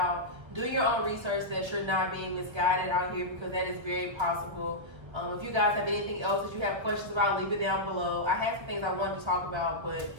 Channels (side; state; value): left; late; 1.5 ms